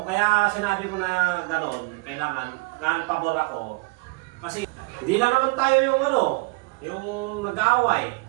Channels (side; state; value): left; quieter; 27.4 dB